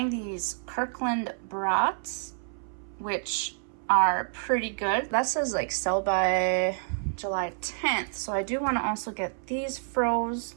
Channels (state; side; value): silent; left; 59 dB below the other